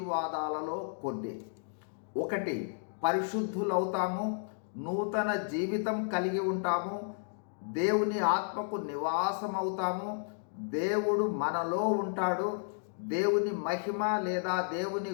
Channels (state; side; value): silent; right; digital silence